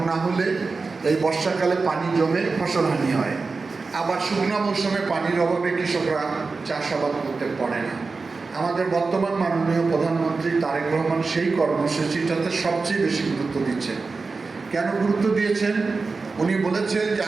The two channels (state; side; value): quieter; left; 4.2 dB